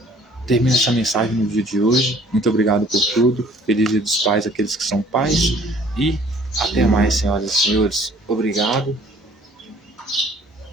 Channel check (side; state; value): both; normal; correlation 0.56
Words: termino essa mensagem no dia de hoje. Muito obrigado por tudo. Feliz Dia dos Pais, aqueles que são pais. E até mais, senhoras e senhores. Obrigado.